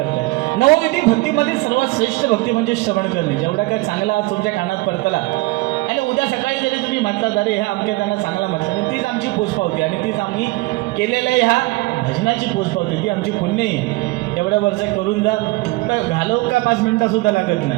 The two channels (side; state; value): left; quieter; 22.0 dB